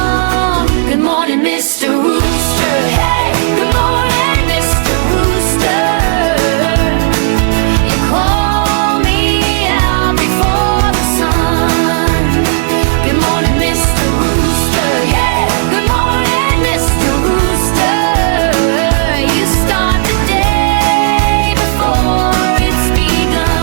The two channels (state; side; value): silent; left; digital silence